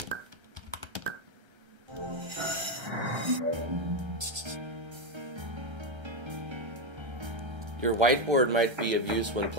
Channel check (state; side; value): late; left; 1.3 ms